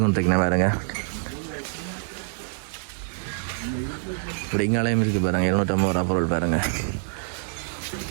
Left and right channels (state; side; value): silent; left; digital silence